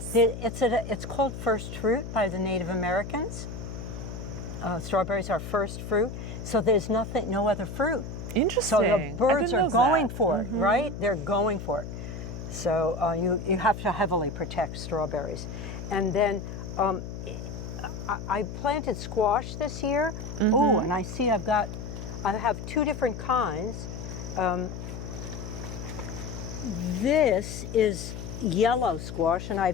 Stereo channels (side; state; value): left; noise; hum, 8 dB below the sound